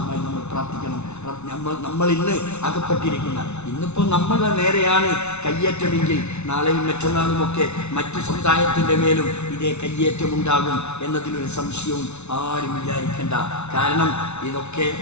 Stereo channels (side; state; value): right; late; 0.81 ms